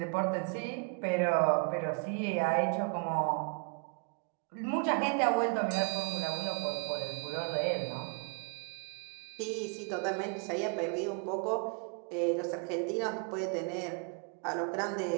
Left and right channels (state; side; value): quieter; left; 39.1 dB